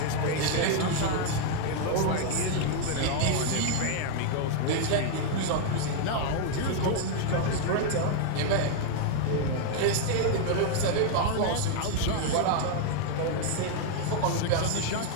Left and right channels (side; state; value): both; different; correlation 0.00